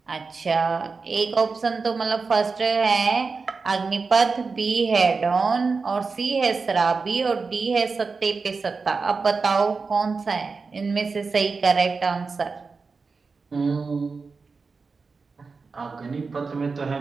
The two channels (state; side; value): quieter; left; 4.5 dB